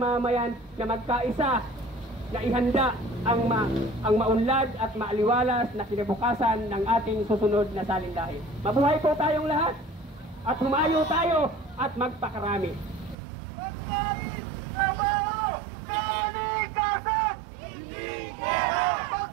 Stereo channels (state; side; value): drops out; left; at 13.2 s